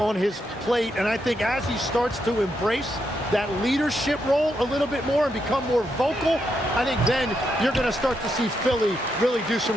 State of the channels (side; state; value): both; normal; correlation 0.81